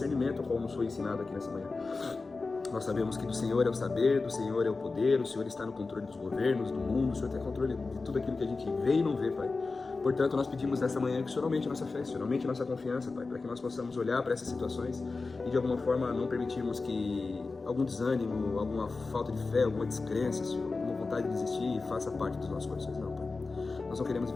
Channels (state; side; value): quieter; right; 3.9 dB